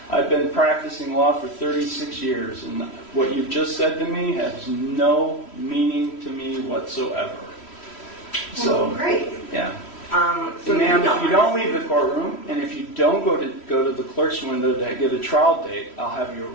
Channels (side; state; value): right; late; 3.1 ms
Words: I've been practicing law for 36 years, and what you've just said to me has no meaning to me whatsoever. So, great. Yeah. So ma'am, if you don't leave the courtroom, and if you don't go to the clerk's window to get a trial date, I'll have you